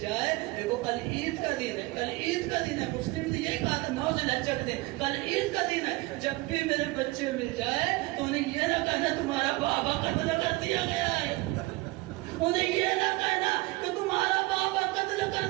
دیکھو کل عید کا دن ہے, کل عید کا دن ہے, مسلم نے یہی کہا تھا 9 ذوالحجہ کے دن, کل عید کا دن ہے, جب بھی میرے بچے مل جائے تو انہیں یہ نہ کہنا تمہارا بابا قتل کر دیا گیا ہے, انہیں یہ نہ کہنا کہ تمہارا بابا قتل کر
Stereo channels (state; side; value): quieter; left; 21.8 dB